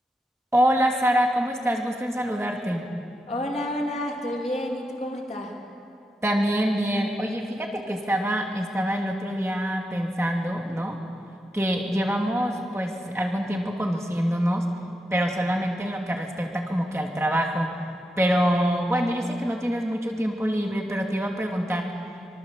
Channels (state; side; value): normal; both; correlation 0.85